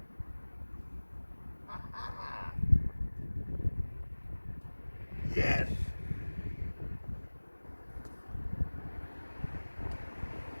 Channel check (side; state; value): both; inverted; correlation -1.00